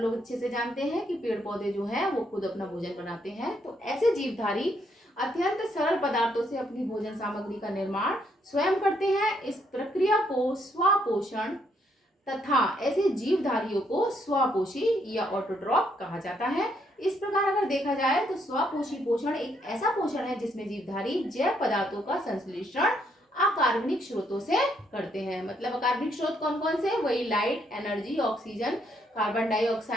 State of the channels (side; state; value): both; normal; correlation 0.73